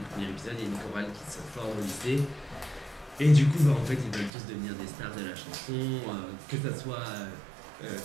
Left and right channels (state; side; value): drops out; left; at 4.3 s